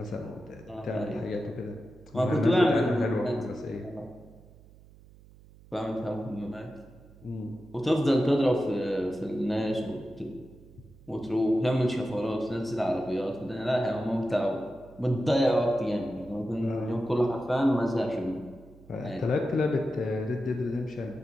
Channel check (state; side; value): noise; right; hum, 23 dB below the sound